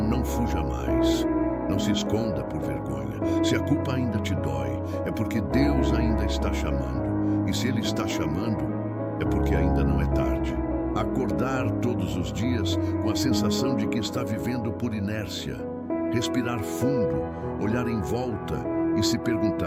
fuja mais. Não se esconda por vergonha. Se a culpa ainda te dói, é porque Deus ainda está chamando. E se Ele está chamando, é porque ainda não é tarde. Acordar todos os dias com a sensação de que está vivendo por inércia. Respirar fundo, olhar em volta e se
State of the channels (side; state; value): both; identical; correlation 1.00